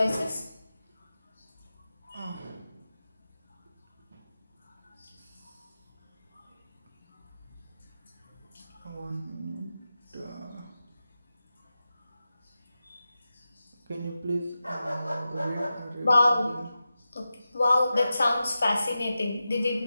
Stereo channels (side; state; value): both; inverted; correlation -0.93